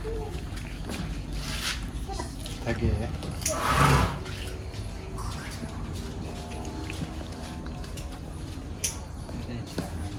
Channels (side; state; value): both; identical; correlation 1.00